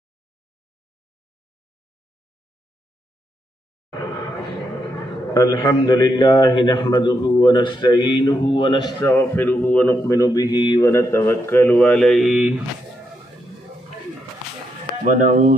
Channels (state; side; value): normal; both; correlation 0.80